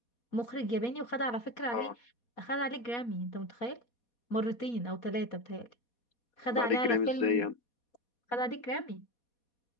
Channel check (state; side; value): late; right; 4.2 ms